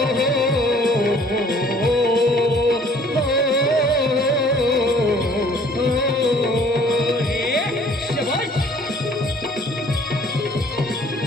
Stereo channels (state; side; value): normal; both; correlation 0.56